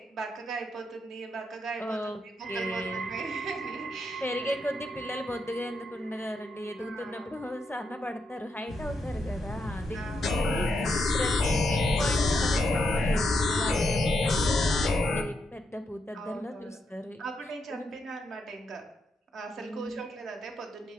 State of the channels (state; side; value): normal; both; correlation 0.81